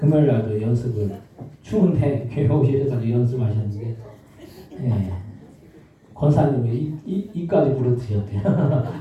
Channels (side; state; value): both; identical; correlation 1.00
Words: 날도 연습을 추운데 교회 오셔서 연습하셨는데, 예, 권사님이 이까지 부르트셨대요.